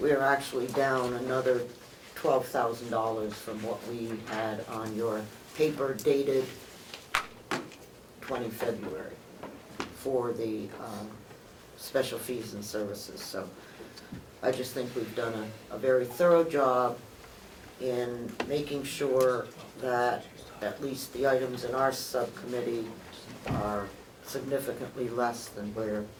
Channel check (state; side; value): identical; both; correlation 1.00